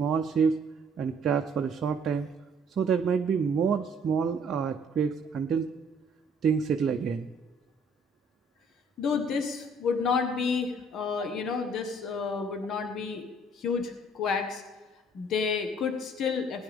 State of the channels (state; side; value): normal; both; correlation 0.60